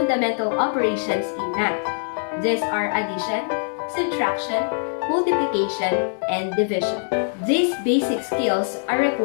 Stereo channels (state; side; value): silent; right; digital silence